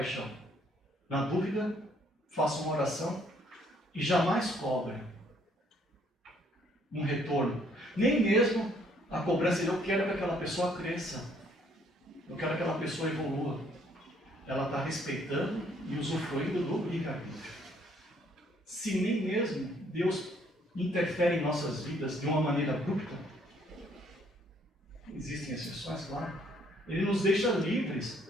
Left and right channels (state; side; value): normal; both; correlation 0.65